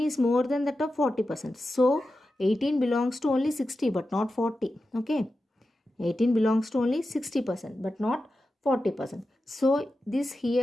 more than that of 40%. So 18 belongs to only 60 but not 40. Okay, 18 belongs to only 60% but not 40%. So this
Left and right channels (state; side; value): normal; both; correlation 0.92